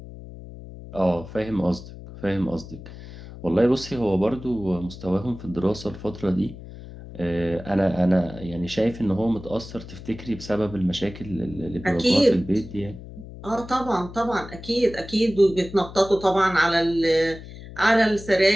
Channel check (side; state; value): left; noise; hum, 14 dB below the sound